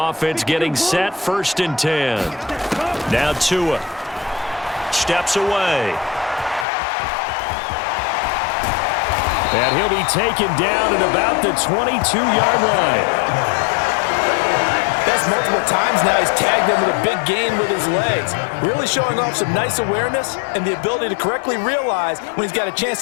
offense getting set, first and 10. Now Tua steps away. And he'll be taken down at about the 22-yard line. That's multiple times now he's tagged him with a big gain with his legs. Really showing off some nice awareness and the ability to correctly realize when he's got a chance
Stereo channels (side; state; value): right; drops out; at 6.7 s